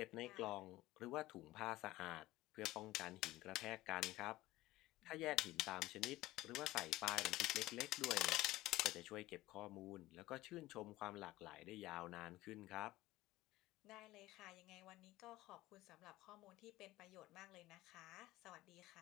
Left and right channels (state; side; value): quieter; right; 17.6 dB